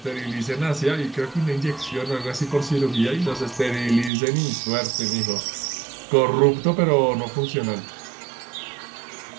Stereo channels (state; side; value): drops out; left; at 4.1 s